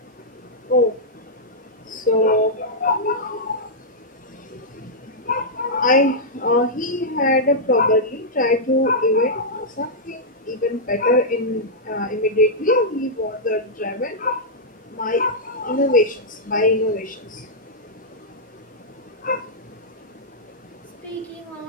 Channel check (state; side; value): normal; both; correlation -0.08